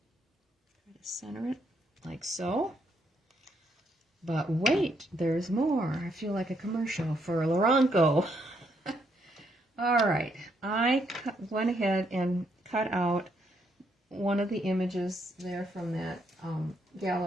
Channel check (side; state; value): both; normal; correlation 0.74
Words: Try to center it like so. But wait, there's more. I feel like a commercial for Loranco. All right, I went ahead and cut out one of the images there from that